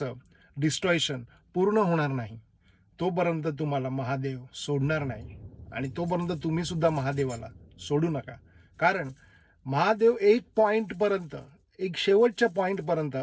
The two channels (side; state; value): both; identical; correlation 1.00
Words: डिस्ट्रॉयशन पूर्ण होणार नाही, तोपर्यंत तुम्हाला महादेव सोडणार नाही. आणि तोपर्यंत तुम्ही सुद्धा महादेवाला सोडू नका. कारण महादेव एक पॉईंटपर्यंत, एक शेवटच्या पॉईंटपर्यंत